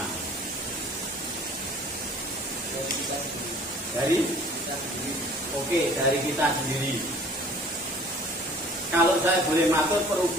Dari kita sendiri. Kalau saya boleh matur,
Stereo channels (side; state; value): both; normal; correlation 0.50